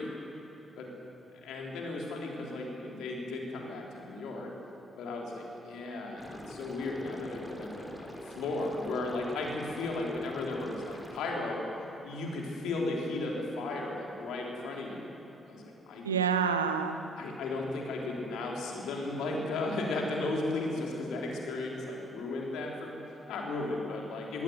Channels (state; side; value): normal; both; correlation 0.53